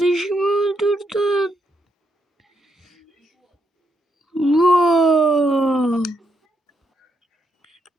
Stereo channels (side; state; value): both; normal; correlation 0.79